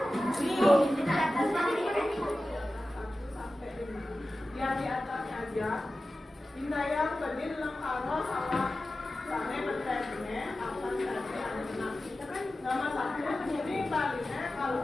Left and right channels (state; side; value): normal; both; correlation 0.94